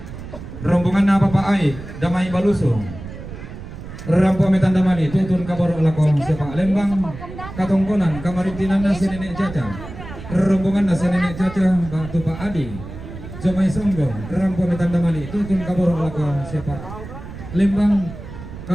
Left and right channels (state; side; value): noise; right; rumble, 12 dB below the sound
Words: Rombongan na Papa Ai Damai Baluso. Rampo metan damali tutun kaboro lako si Pak Lembang. Katongkonan kamarintinan na si Nenek Caca. Rombongan na si Nenek Caca Batu Pak Adi. Jamai Songgo. Rampo metan damali tutun kaboro lako si Pak Lembang.